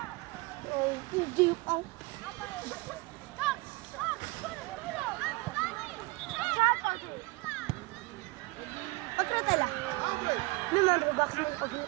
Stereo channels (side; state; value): left; quieter; 24.4 dB